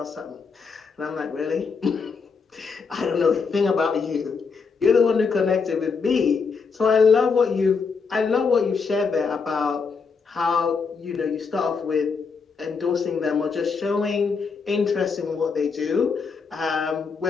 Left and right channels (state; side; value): quieter; right; 5.2 dB